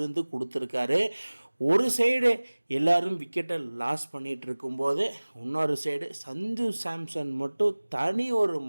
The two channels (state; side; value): inverted; both; correlation -1.00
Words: கொடுத்துருக்காரு. ஒரு சைடு எல்லோரும் விக்கெட்டை லாஸ் பண்ணிகிட்டு இருக்கும்போது இன்னொரு சைடு சஞ்சு சாம்சன் மட்டும் தனி ஒரு